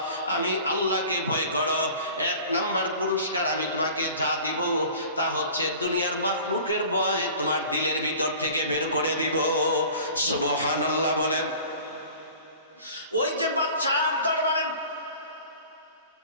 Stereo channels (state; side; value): inverted; both; correlation -0.44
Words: আমি আল্লাহকে ভয় করো। এক নাম্বার পুরস্কার আমি তোমাকে যা দিব তা হচ্ছে দুনিয়ার মাখলুকের ভয় তোমার দিলের ভিতর থেকে বের করে দিব। সুবহানাল্লাহ বলেন। ওই যে বাচ্চার দরবারে